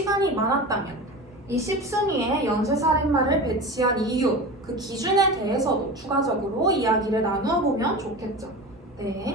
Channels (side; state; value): both; normal; correlation 0.30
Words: 많았다면 이 10순위에 연쇄살인마를 배치한 이유, 그 기준에 대해서도 추가적으로 이야기를 나누어 보면 좋겠죠.